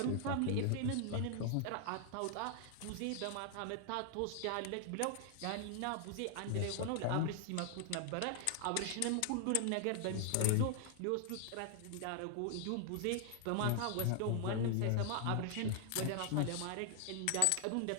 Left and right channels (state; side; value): different; both; correlation 0.00